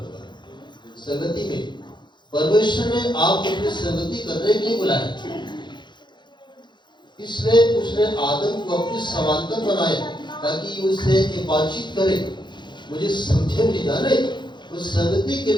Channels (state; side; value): late; right; 0.22 ms